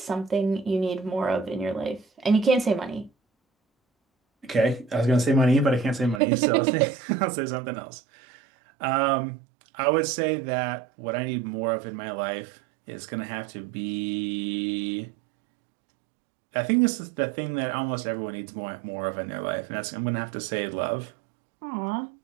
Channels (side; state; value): left; drops out; at 6.2 s